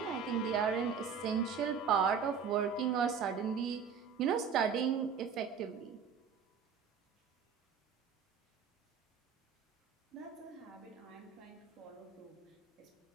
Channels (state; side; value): quieter; left; 6.6 dB